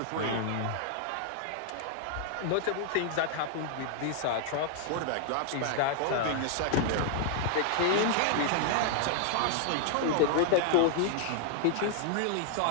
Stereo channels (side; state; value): both; different; correlation 0.00